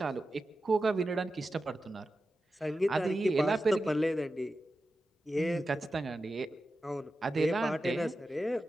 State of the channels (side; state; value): both; normal; correlation 0.92